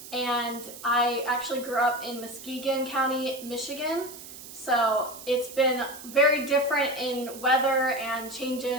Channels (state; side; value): noise; right; hiss, 14 dB below the sound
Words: And I actually grew up in Muskegon County, Michigan. So it's been very different in weather and